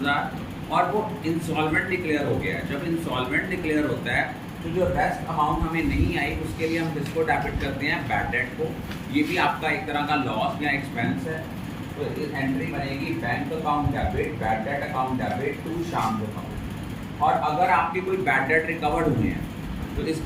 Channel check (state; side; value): identical; both; correlation 1.00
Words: और वो इंसॉल्वेंट डिक्लेयर हो गया है। जब इंसॉल्वेंट डिक्लेयर होता है तो जो रेस्ट अमाउंट हमें नहीं आई उसके लिए हम किसको डेबिट करते हैं, बैड डेट को। ये भी आपका एक तरह का लॉस या एक्सपेंस है। तो इस एंट्री बनेगी bank account debit bad debt account debit to Sham account. और अगर आपके कोई बैड डेट रिकवर्ड हुए हैं तो